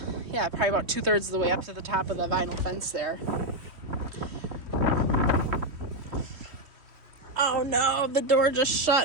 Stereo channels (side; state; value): left; late; 3.1 ms